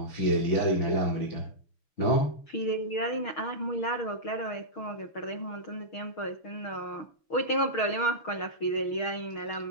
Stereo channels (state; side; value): late; right; 6.4 ms